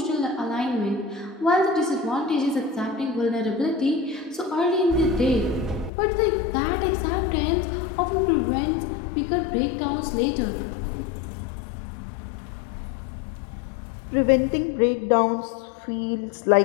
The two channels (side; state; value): right; drops out; at 5.9 s